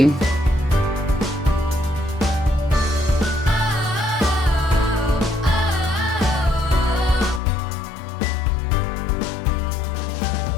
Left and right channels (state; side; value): drops out; right; at 7.4 s